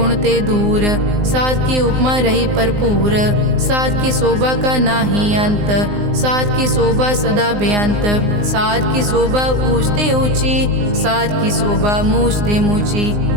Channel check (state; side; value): late; left; 19 ms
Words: ते दूर, साध की उपमा रही भरपूर। साध की शोभा का नाही अंत, साध की शोभा सदा बेअंत। साध की शोभा ऊंचते ऊंची, साध की शोभा मूछते मूची।